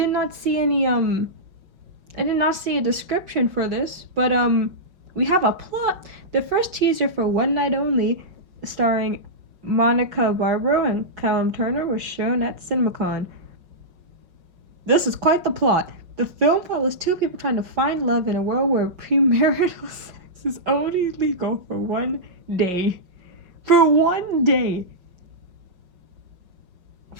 not see any I did not see a description for this, but we have a plot. The first teaser for One Night Only, starring Monica Barbaro and Callum Turner, was shown at CinemaCon. This is quite the plot. The film follows two people trying to find love in a world where premarital sex is only legal for one day. For one day.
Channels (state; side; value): late; left; 5.5 ms